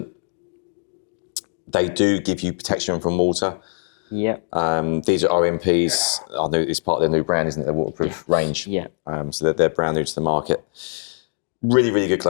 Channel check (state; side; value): silent; right; digital silence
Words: They do give you protection from water. Yeah. These are RMPs. I know it's part of their new brand, isn't it? Their waterproof range. Yeah. So they're brand new to the market. Really, really good